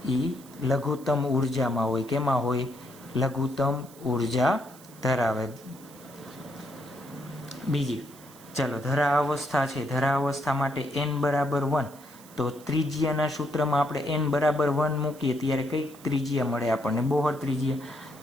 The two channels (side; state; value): right; noise; hiss, 22 dB below the sound